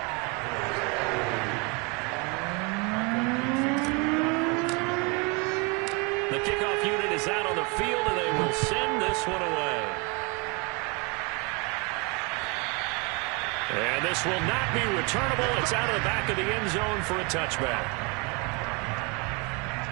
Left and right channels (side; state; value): left; quieter; 30.9 dB